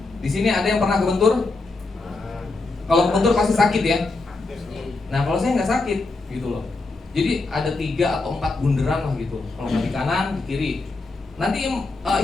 Di sini ada yang pernah kebentur? Kalau kebentur pasti sakit ya. Nah, kalau saya nggak sakit, gitu loh. Jadi ada 3 atau 4 bunderan lah gitu. Kalau nggak di kanan, di kiri. Nanti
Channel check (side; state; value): right; quieter; 3.4 dB